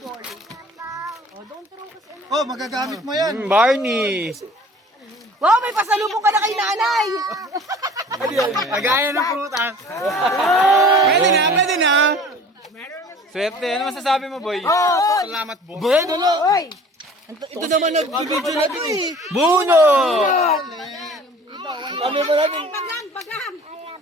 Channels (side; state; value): both; normal; correlation 0.47